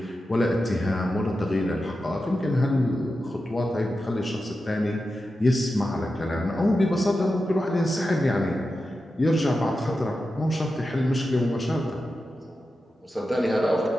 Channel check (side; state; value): both; normal; correlation 0.91